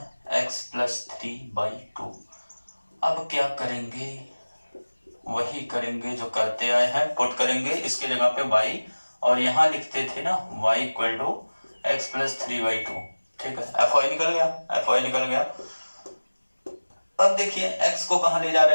x plus 3/2। अब क्या करेंगे? वही करेंगे जो करते आए हैं, पुट करेंगे इसके जगह पे y, और यहाँ लिखते थे ना y equal to x plus 3/2, ठीक है। fy निकल गया, fy निकल गया। अब देखिए x को कहाँ ले जा रहा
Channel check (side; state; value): both; inverted; correlation -1.00